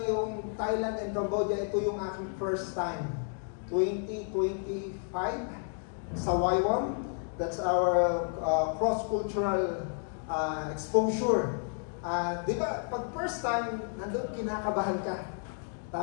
yung Thailand and Cambodia, ito yung aking first time. 2025 sa YWAM. That's our cross-cultural exposure. Di ba, pag first time, nandun kinakabahan ka.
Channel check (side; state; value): right; silent; 57 dB below the other